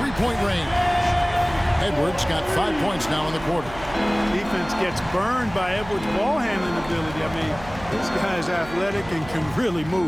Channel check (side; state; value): right; noise; hum, 16 dB below the sound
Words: three-point range. Edwards got 5 points now in the quarter. Defense gets burned by Edwards' ball handling ability. I mean, this guy's athletic and can really